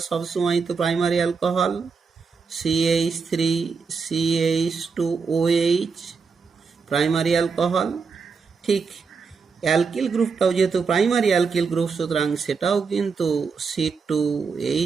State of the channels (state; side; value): quieter; left; 5.2 dB